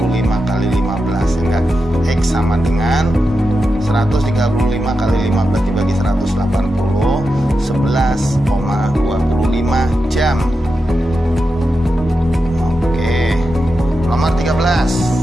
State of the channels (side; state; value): both; normal; correlation 0.89